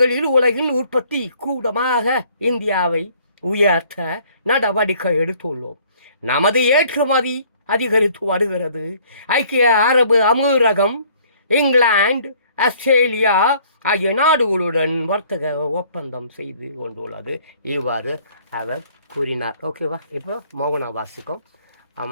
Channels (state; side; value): inverted; both; correlation -0.58